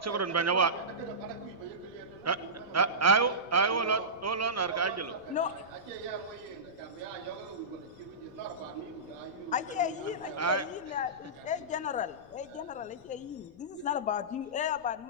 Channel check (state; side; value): noise; left; rumble, 28 dB below the sound